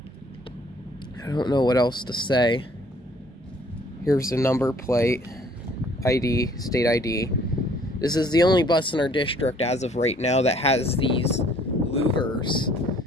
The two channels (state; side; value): normal; both; correlation 0.59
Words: I don't know what else to say. Here's the number plate, ID, state ID. This is the only bus in our district as of right now that has these louvers.